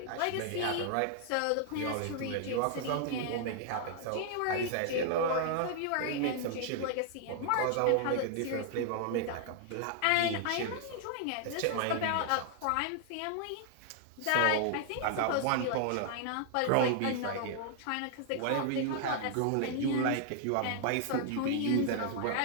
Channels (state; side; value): different; both; correlation -0.01